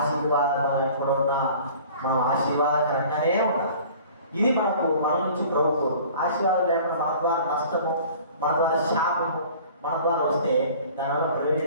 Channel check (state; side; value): inverted; both; correlation -0.47